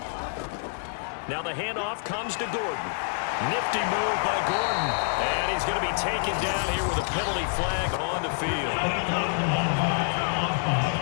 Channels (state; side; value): silent; right; 60 dB below the other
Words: Now the handoff comes to Gordon. Nifty move by Gordon. And he's going to be taken down here with a penalty flag on the field.